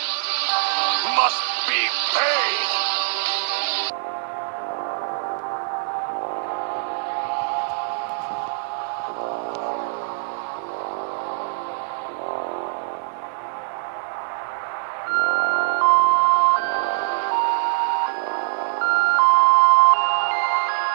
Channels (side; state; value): left; silent; digital silence